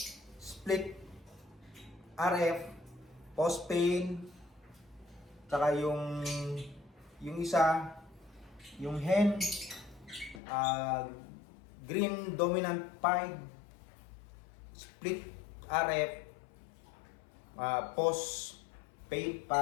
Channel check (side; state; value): right; drops out; at 10.4 s